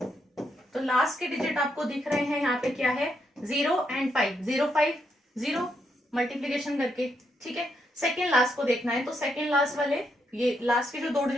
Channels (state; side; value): normal; both; correlation 0.79